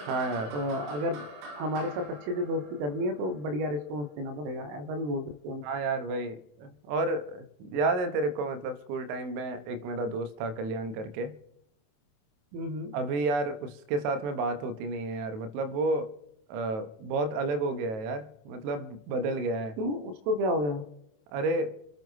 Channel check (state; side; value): late; left; 27 ms